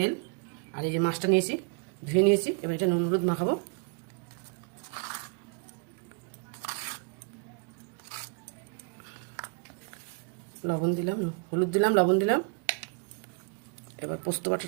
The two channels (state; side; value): quieter; left; 34.6 dB